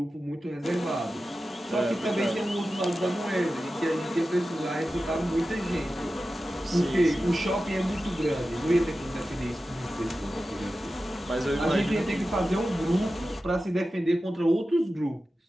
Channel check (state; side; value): normal; both; correlation 0.93